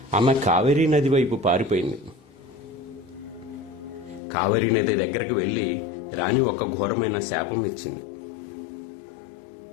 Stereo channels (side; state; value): right; drops out; at 4.2 s